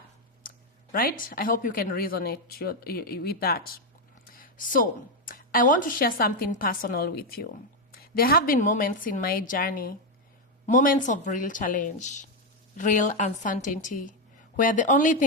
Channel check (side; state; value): both; normal; correlation 0.04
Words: Right? I hope you can resonate with that. So, I want to share something personal with you. There have been moments in my journey, moments of real challenge, real uncertainty, where the only